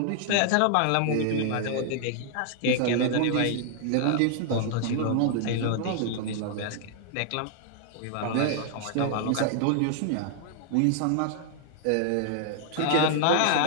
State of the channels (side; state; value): both; different; correlation 0.00